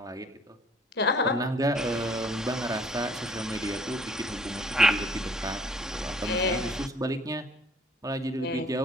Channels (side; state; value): both; normal; correlation 0.57